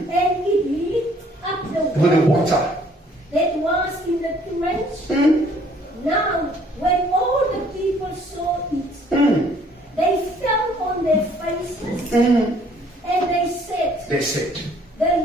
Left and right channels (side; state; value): both; normal; correlation 0.60